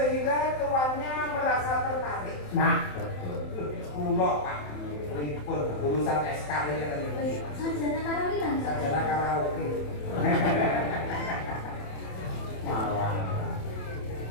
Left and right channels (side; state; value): right; late; 27 ms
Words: tuannya merasa tertarik. Nah, betul. Kulo Pak, pripun urusan SK ini kan ini. Sarjana karaoke kan? Sarjana karaoke. Malah.